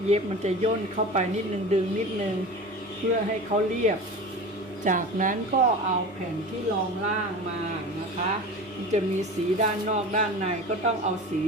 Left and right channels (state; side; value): normal; both; correlation 0.33